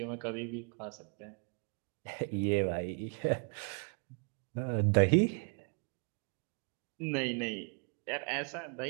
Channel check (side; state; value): left; quieter; 38.5 dB